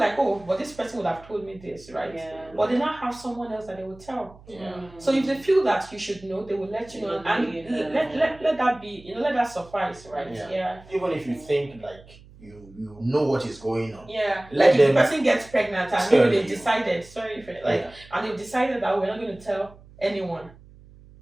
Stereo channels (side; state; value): right; noise; hum, 23 dB below the sound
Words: but this person would have told me this, right? But they now have someone else that they will tell. So if they feel that you should know, they will let you know, and let that be, let that suffice, right? Even if you think like you know what is going on. Like if the person gets pregnant and maybe they've decided, and they've decided that we're not going to tell anyone.